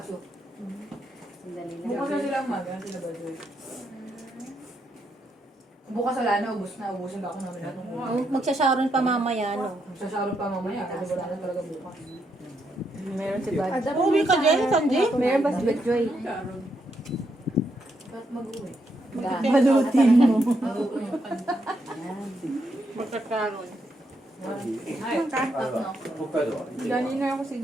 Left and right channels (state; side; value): normal; both; correlation 0.79